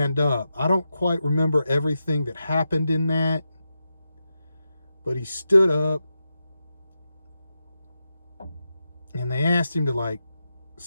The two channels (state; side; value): inverted; both; correlation -0.89